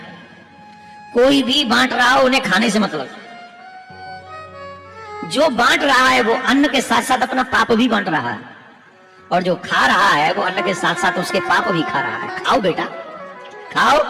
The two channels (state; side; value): identical; both; correlation 1.00